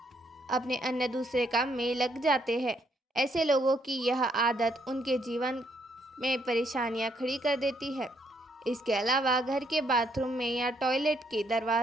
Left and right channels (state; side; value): normal; both; correlation 0.72